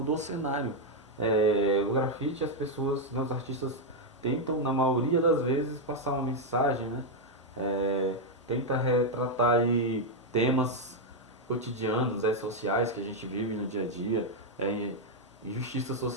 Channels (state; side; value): normal; both; correlation 0.00